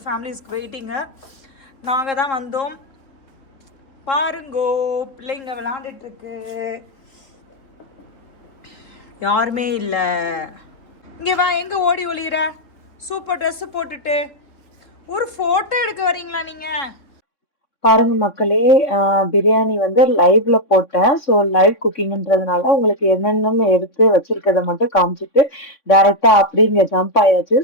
ஃபேமிலிஸ்க்கு வெயிட்டிங்கு. நாங்கள் தான் வந்தோம். பாருங்கோ, பிள்ளைங்க விளாண்டுட்டுருக்கு. யாருமே இல்லை. இங்கே வா, எங்கே ஓடி ஒளிகிற? சூப்பர் ட்ரெஸ்ஸு போட்டுட்டு ஒரு ஃபோட்டோ எடுக்க வரீங்களா நீங்கள்? பாருங்க மக்களே, பிரியாணி வந்து லைவ்ல போட்டேன். ஸோ லைவ் குக்கிங்ன்றதுனால உங்களுக்கு என்னென்னு எடுத்து வச்சிருக்கத மட்டும் காமிச்சிட்டு டைரக்டா அப்படி இங்க ஜம்ப் ஆயாச்சு.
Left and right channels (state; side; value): late; right; 3.6 ms